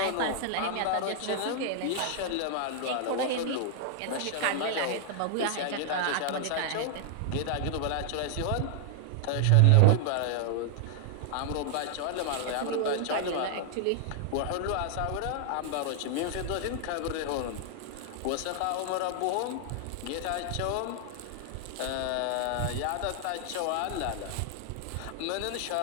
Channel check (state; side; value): different; both; correlation 0.00